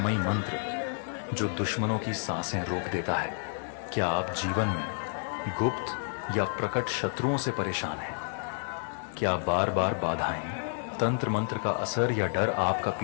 मंत्र जो दुश्मनों की सांसें रोक देता है। क्या आप जीवन में गुप्त या प्रकट शत्रुओं से परेशान हैं? क्या बार बार बाधाएं, तंत्र मंत्र का असर या डर आपका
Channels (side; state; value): right; silent; 58 dB below the other